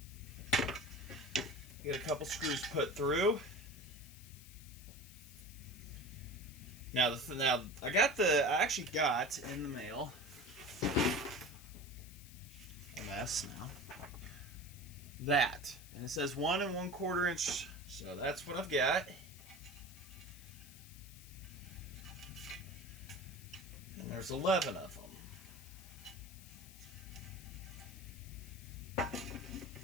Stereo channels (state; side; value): noise; left; hiss, 18 dB below the sound